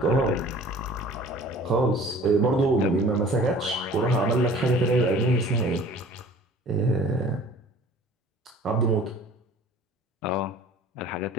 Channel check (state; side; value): normal; both; correlation 0.47